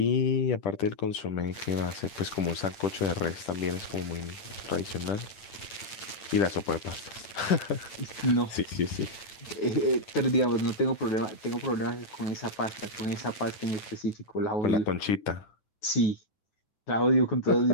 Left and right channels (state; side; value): late; right; 8.9 ms